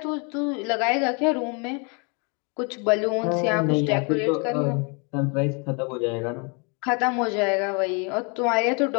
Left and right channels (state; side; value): quieter; right; 34.0 dB